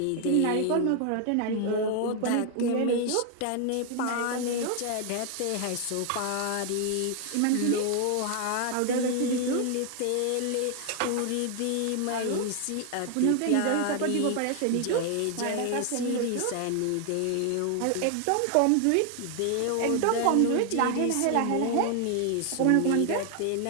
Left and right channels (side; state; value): both; different; correlation 0.00